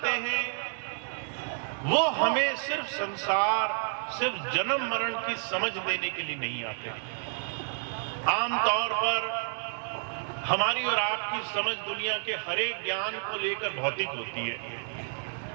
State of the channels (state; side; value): silent; left; 58 dB below the other